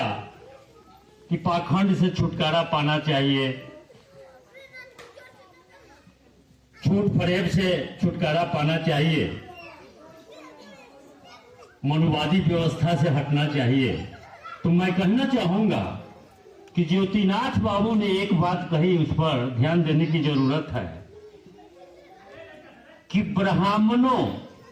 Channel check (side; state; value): both; identical; correlation 1.00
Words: कि पाखंड से छुटकारा पाना चाहिए, झूठ फरेब से छुटकारा पाना चाहिए, मनुवादी व्यवस्था से हटना चाहिए। तो मैं कहना चाहूंगा कि ज्योतिनाथ बाबू ने एक बात कही, उस पर ध्यान देने की जरूरत है कि ब्राह्मणों,